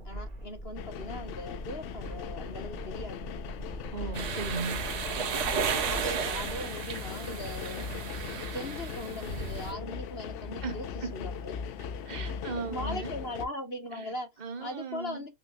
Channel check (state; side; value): late; right; 1.9 ms